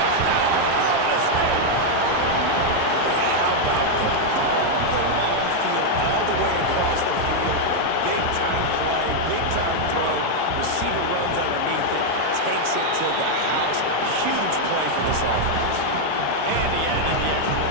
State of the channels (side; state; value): both; different; correlation 0.00